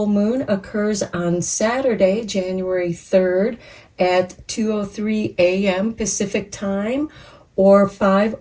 Moon occurs on Saturday, January 3rd at 2:03 a.m. Pacific Time or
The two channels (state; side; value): identical; both; correlation 1.00